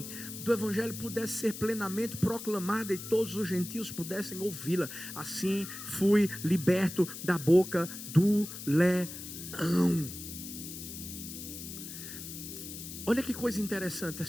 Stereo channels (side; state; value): left; noise; hiss, 10 dB below the sound